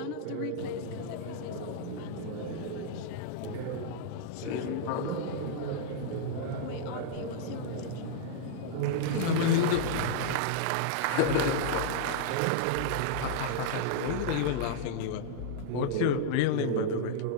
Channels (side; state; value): both; different; correlation -0.01